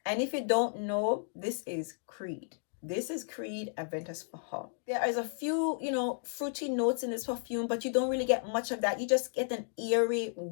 And if you don't know, this is Creed. This is Creed Aventus for her. There is a few, fruity notes in this perfume, but you don't really get much of that. You just get an eerie,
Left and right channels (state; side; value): silent; right; digital silence